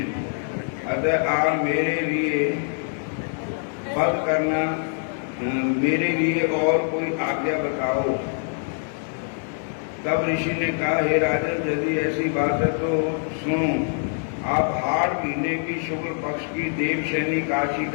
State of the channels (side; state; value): right; silent; 58 dB below the other